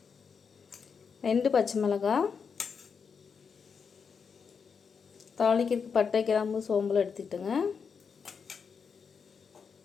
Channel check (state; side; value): quieter; right; 6.1 dB